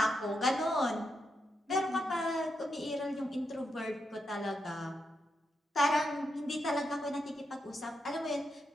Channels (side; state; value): both; normal; correlation 0.84